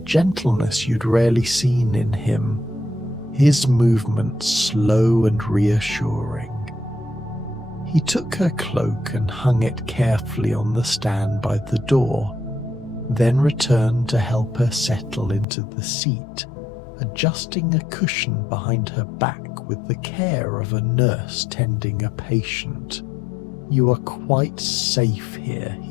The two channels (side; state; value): right; drops out; at 15.5 s